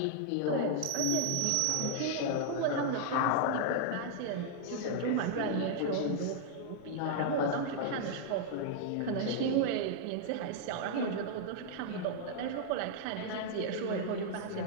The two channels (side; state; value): both; different; correlation -0.01